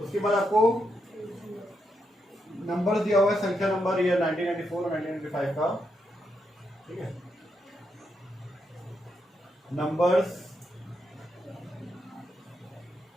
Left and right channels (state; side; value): normal; both; correlation 0.81